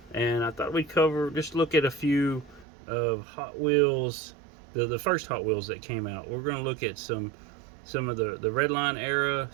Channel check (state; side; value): drops out; left; at 2.7 s